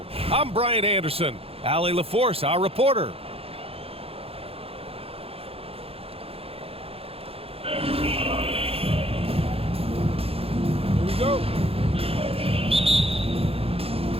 I'm Brian Anderson. Allie LaForce, our reporter. Here we go.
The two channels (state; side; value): late; left; 0.28 ms